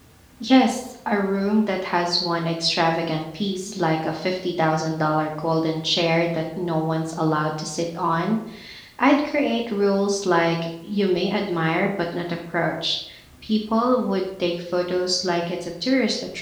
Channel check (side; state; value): both; identical; correlation 1.00